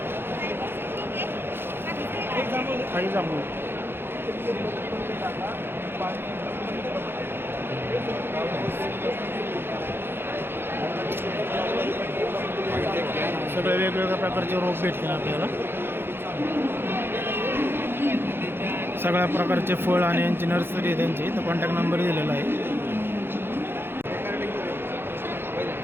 काही जांभूळ सगळे वेगवेगळ्या प्रकारचे रोप भेटतील आपल्याला. सगळ्या प्रकारचे फळ आणि यांची नर्सरी आहे त्यांची, तर कॉन्टॅक्ट नंबर दिलेला आहे.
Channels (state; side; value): late; left; 0.11 ms